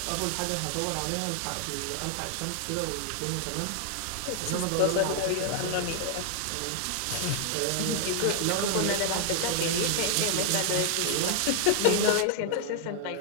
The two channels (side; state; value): both; different; correlation 0.00